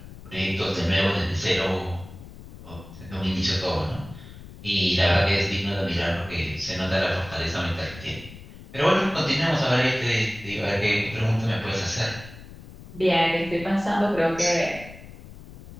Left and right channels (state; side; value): noise; left; rumble, 16 dB below the sound